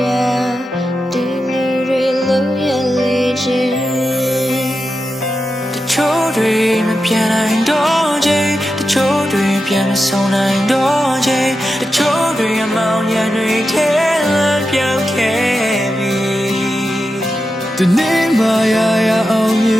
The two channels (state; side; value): normal; both; correlation 0.90